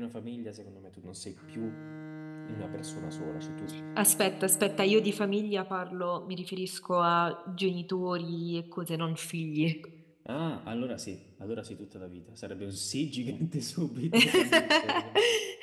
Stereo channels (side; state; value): both; identical; correlation 1.00